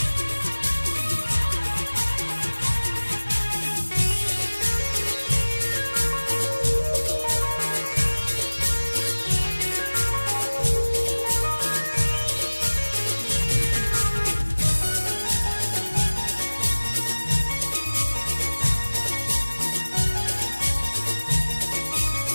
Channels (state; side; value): inverted; both; correlation -1.00